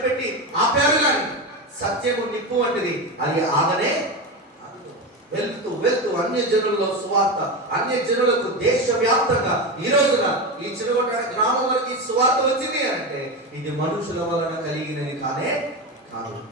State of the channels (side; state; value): both; normal; correlation 0.18